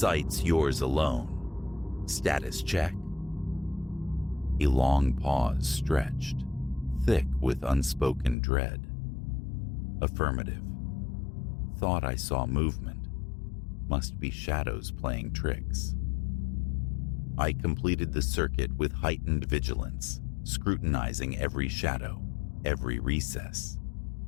yours alone. Status check?" A long pause stretched, thick with unspoken dread. "Affirmative. Thought I saw movement. Must be shadows playing tricks." I completed the circuit with heightened vigilance, scrutinizing every shadow, every recess.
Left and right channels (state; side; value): drops out; right; at 8.3 s